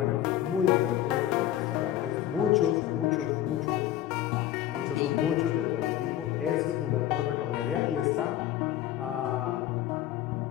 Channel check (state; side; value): quieter; right; 12.5 dB